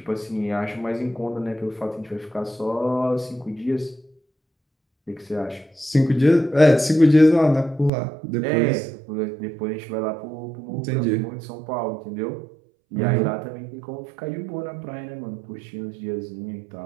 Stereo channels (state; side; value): drops out; left; at 7.9 s